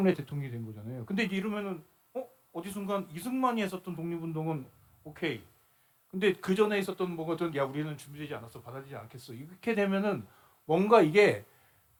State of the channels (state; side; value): identical; both; correlation 1.00